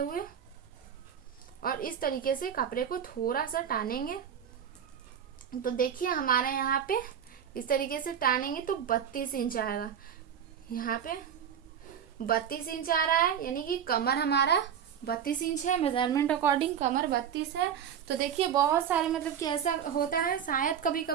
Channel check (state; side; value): quieter; left; 8.5 dB